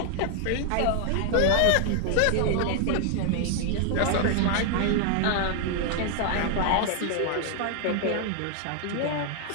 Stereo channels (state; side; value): different; both; correlation 0.00